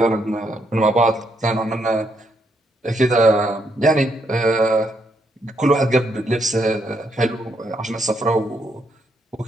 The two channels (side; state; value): both; normal; correlation 0.76